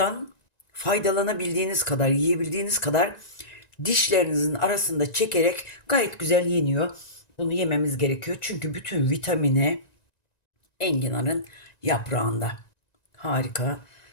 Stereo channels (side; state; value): right; late; 1.9 ms